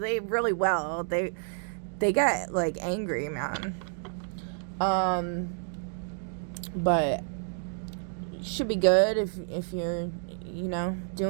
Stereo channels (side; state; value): left; silent; digital silence